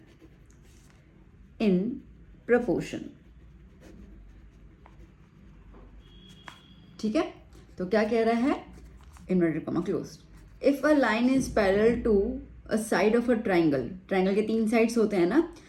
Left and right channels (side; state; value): both; identical; correlation 1.00